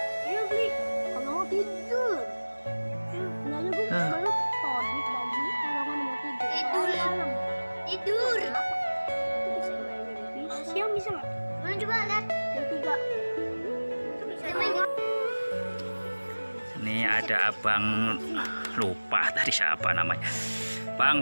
Ayo beli. Kalau mau tidur. Nanya gue baru todit lagi. Kalau mau tidur. Tidur. Siang bisa nggak? Mana coba lihat. Yang 3. Ini ada abang, lupa tadi siapa namanya.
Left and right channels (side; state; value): both; inverted; correlation -1.00